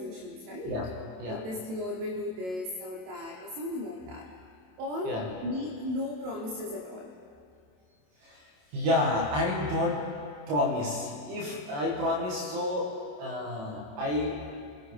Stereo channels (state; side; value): late; left; 27 ms